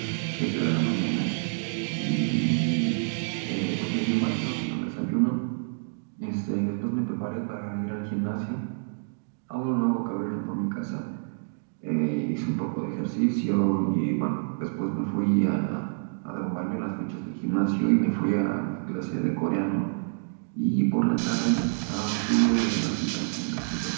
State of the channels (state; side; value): silent; left; digital silence